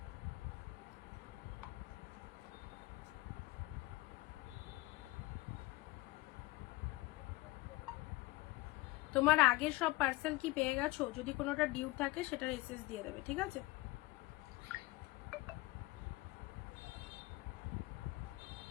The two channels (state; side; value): quieter; right; 19.5 dB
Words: তোমার আগের সব পার্সেল কি পেয়ে গেছো? যদি কোনোটা ডিউ থাকে সেটার এসএস দিয়ে দেবে, ঠিক আছে?